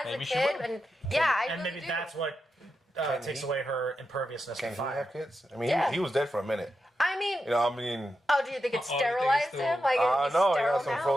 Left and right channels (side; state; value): both; normal; correlation 0.88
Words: Maybe a she kid, will. and I And really maybe do. that's what takes he? away her imperviousness Can to he fire. have kids? I mean, Yeah. he was dead for a minute. I mean, Oh, do you think it you think it's sterilized still- him? Like, I is know. He sterile got some now?